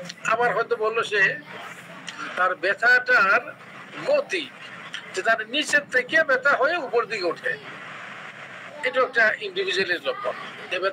আবার হয়তো বললো সে তার ব্যথাটার গতি, যে তার নিচের থেকে ব্যথা হয়ে উপর দিকে ওঠে, এটা একটা ইন্ডিভিজুয়ালের লক্ষণ, যে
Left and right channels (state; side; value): identical; both; correlation 1.00